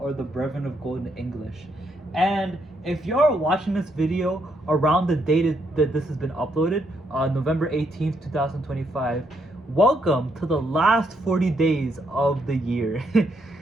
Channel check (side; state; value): both; normal; correlation 0.76